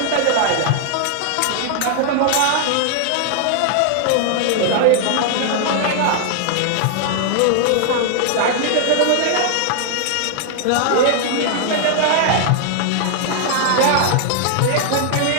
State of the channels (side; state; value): both; different; correlation 0.00